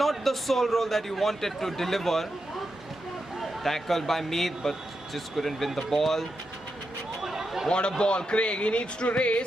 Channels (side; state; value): both; normal; correlation 0.87